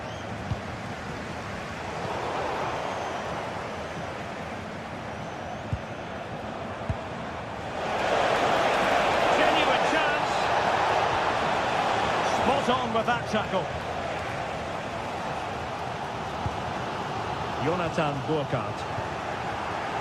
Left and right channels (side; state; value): both; identical; correlation 1.00